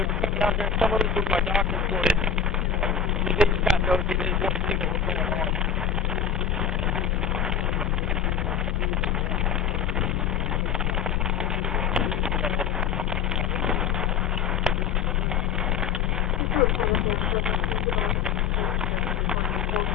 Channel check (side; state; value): right; quieter; 7.2 dB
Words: come down there, and some of them were my doctor for it. They just got nosy, they just wanted to see what was going on.